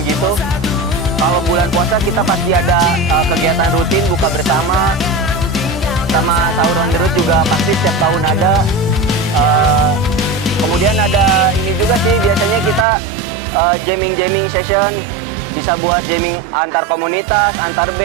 gitu. Kalau bulan puasa kita pasti ada kegiatan rutin buka bersama, sama sahur on the road juga pasti setiap tahun ada. Kemudian ada ini juga sih, biasanya kita jamming session, bisa buat jamming antar komunitas, antar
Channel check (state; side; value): drops out; left; at 12.9 s